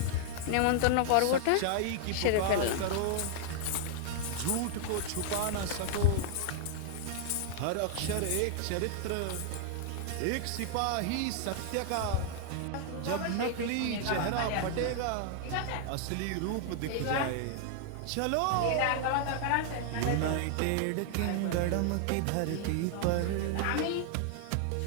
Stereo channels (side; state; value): both; different; correlation 0.00